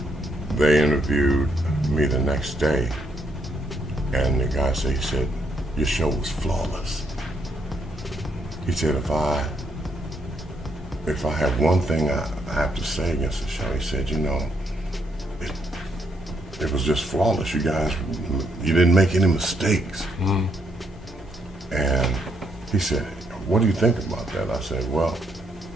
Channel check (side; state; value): both; normal; correlation 0.74